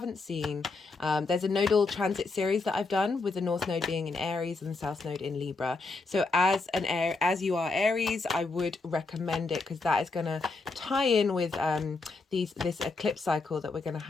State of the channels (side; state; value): right; quieter; 3.8 dB